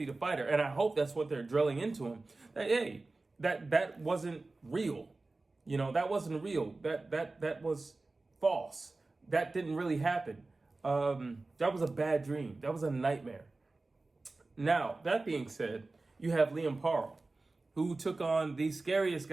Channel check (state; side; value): quieter; left; 3.3 dB